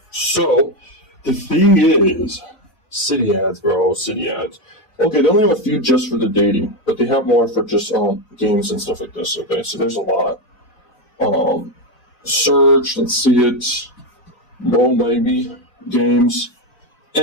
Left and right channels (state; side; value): late; right; 4.0 ms